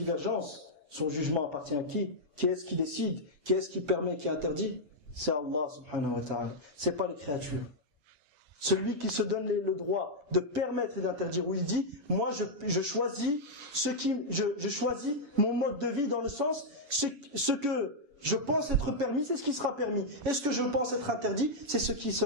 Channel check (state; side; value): late; left; 7.1 ms